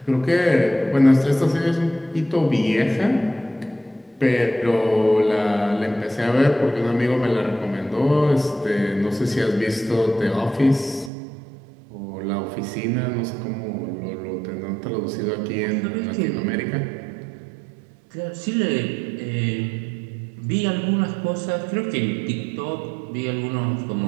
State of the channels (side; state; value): left; drops out; at 11.1 s